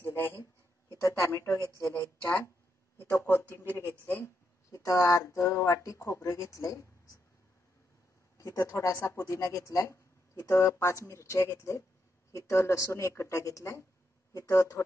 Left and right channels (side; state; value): both; normal; correlation 0.81